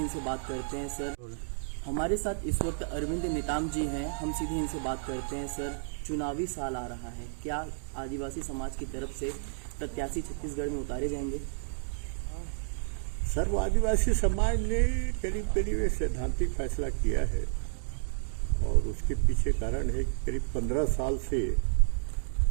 बात करते हैं। सर, हमारे साथ इस वक्त अरविंद नेताम जी हैं, हम सीधे इनसे बात करते हैं। सर, चुनावी साल आ रहा है, क्या आदिवासी समाज की तरफ से प्रत्याशी छत्तीसगढ़ में उतारे जाएंगे? सर्व आदिवासी समाज ने करीब करीब एक सैद्धांतिक फैसला किया है और उसके पीछे कारण है कि करीब 15 साल से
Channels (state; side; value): silent; left; digital silence